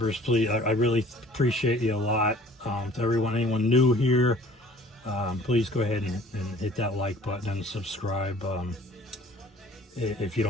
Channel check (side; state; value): both; normal; correlation 0.51